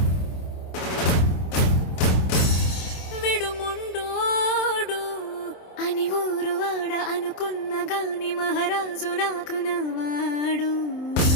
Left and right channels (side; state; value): right; late; 27 ms